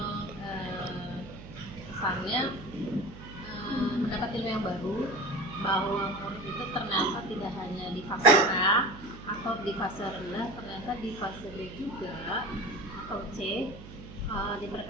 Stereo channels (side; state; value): right; noise; hum, 14 dB below the sound